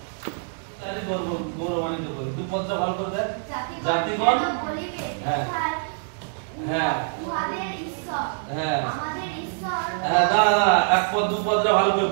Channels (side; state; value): left; silent; digital silence